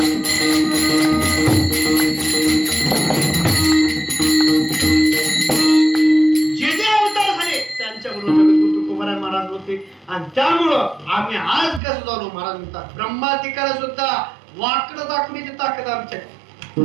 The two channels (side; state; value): left; drops out; at 11.8 s